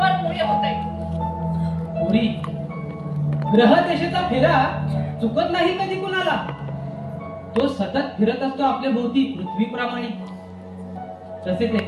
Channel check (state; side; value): identical; both; correlation 1.00